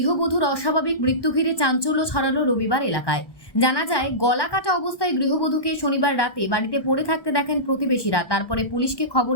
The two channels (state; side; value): late; right; 1.2 ms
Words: অস্বাভাবিক মৃত্যু ঘিরে চাঞ্চল্য ছড়ালো রবিবার এলাকায়। জানা যায়, গলা কাটা অবস্থায় গৃহবধূকে শনিবার রাতে বাড়িতে পড়ে থাকতে দেখেন প্রতিবেশীরা। তারপরে পুলিশকে খবর